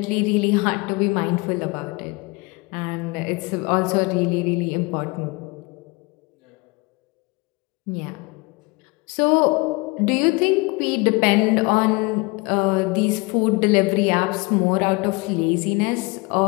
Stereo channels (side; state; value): right; quieter; 26.1 dB